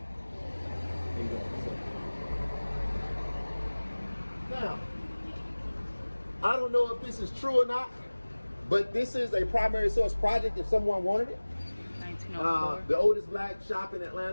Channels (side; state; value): both; inverted; correlation -1.00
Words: Now, I don't know if this is true or not, but this is a primary source project if someone wanted it. 1904. The oldest black shop in